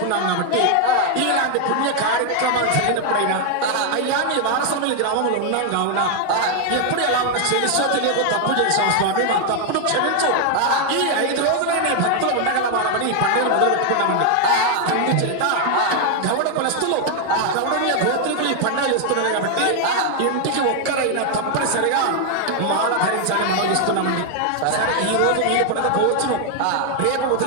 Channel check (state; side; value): different; both; correlation 0.01